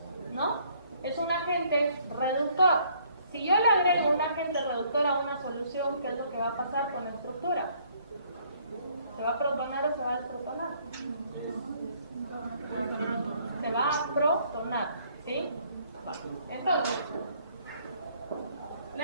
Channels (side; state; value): both; inverted; correlation -0.63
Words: ¿No? Es un agente reductor. Si yo le agrego un agente reductor a una solución, ¿qué es lo que va a pasar con la estructura? ¿Se va a protonar o se va a desprotonar? Se va a protonar, ¿sí? Entonces, le